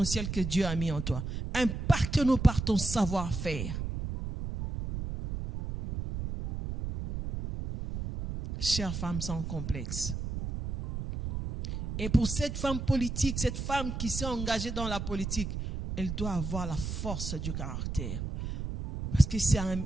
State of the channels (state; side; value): noise; right; rumble, 5 dB below the sound